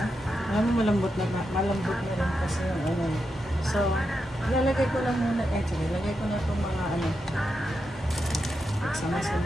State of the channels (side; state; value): both; normal; correlation 0.86